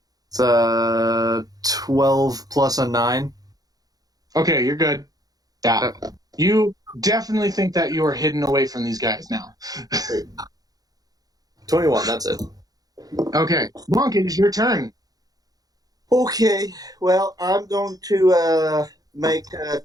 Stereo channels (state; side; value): late; left; 0.18 ms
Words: It's 12 plus a 9. Okay, you're good. Yeah. You definitely think that you are hidden away from these guys now. 21, that's it. Okay. Monk, it is your turn. Okay, well, I'm going to make